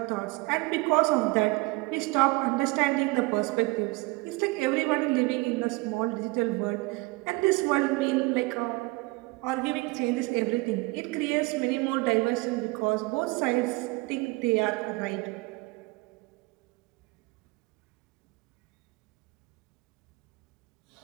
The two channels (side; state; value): left; quieter; 24.3 dB